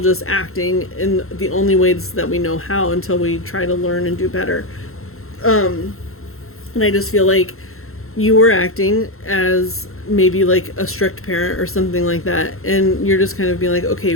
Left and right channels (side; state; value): right; late; 0.62 ms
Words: acting in the only ways that we know how until we try to learn and do better. And I just feel like you were acting as maybe like a strict parent or something like that, and you're just kind of being like, okay,